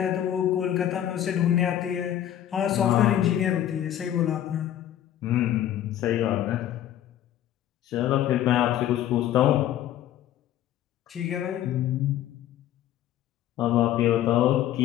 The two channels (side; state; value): right; quieter; 11.8 dB